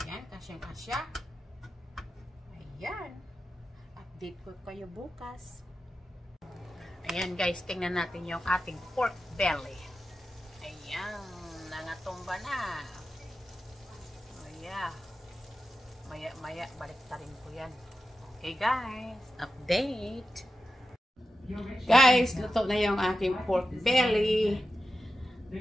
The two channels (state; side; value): normal; both; correlation 0.91